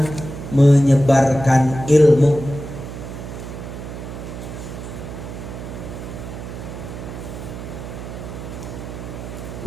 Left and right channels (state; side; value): noise; right; hum, 9 dB below the sound